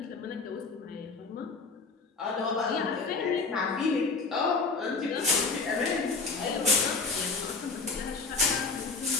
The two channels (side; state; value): right; quieter; 4.2 dB